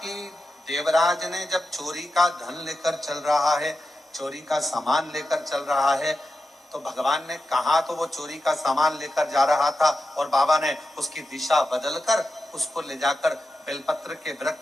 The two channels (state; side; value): normal; both; correlation 0.90